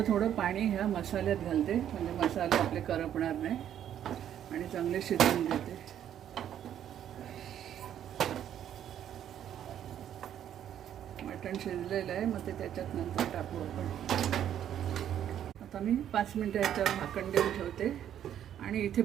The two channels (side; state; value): left; quieter; 10.3 dB